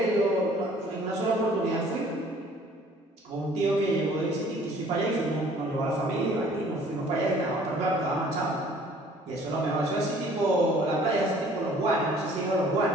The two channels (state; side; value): normal; both; correlation 0.54